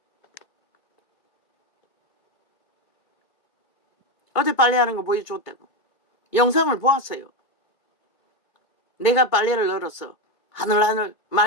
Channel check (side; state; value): right; late; 2.2 ms